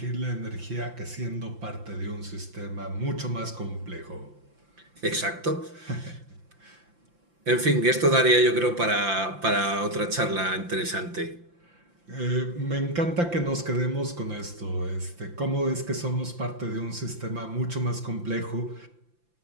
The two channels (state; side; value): late; left; 5.8 ms